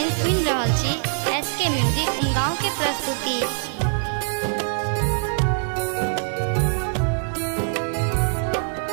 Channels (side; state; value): left; silent; 59 dB below the other